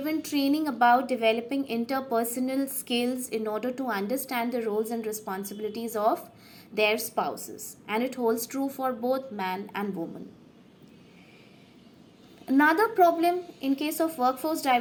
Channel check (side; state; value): both; identical; correlation 1.00